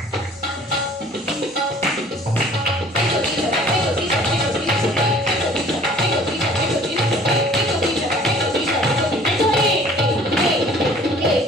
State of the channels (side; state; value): both; normal; correlation 0.52